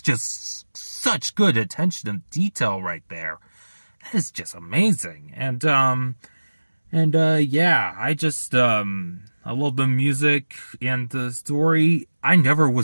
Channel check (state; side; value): inverted; both; correlation -1.00